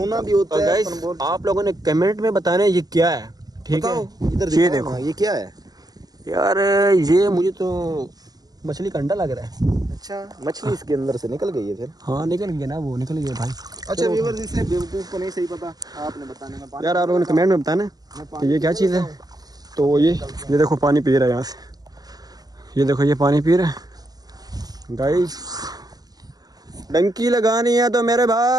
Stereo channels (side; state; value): left; late; 0.19 ms